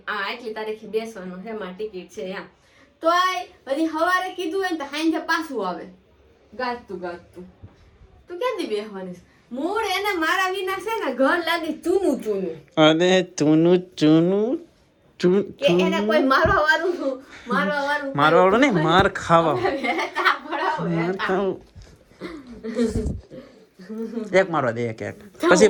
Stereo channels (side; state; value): both; identical; correlation 1.00